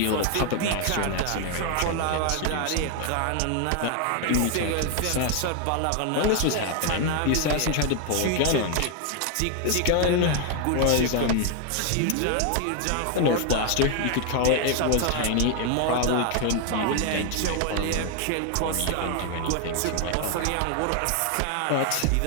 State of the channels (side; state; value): both; different; correlation 0.00